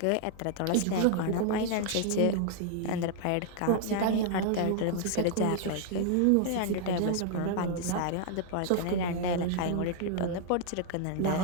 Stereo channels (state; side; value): different; both; correlation -0.01